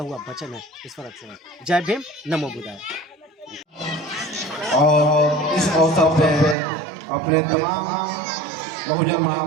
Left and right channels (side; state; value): left; drops out; at 6.6 s